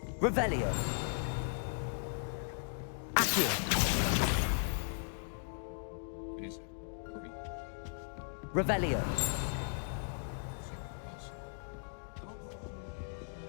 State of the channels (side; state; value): right; silent; digital silence